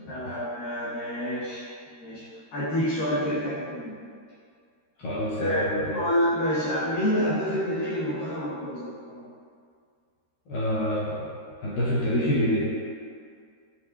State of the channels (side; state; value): right; late; 13 ms